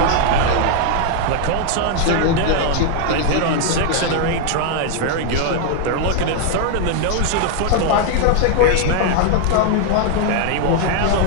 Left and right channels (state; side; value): different; both; correlation 0.00